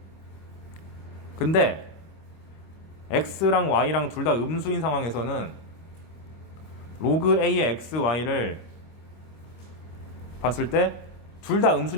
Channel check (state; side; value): late; right; 25 ms